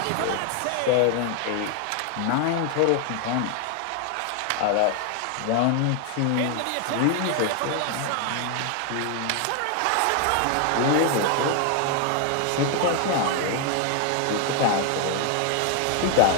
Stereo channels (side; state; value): both; different; correlation 0.00